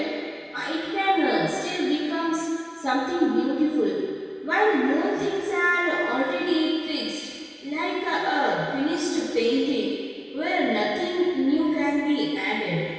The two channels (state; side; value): identical; both; correlation 1.00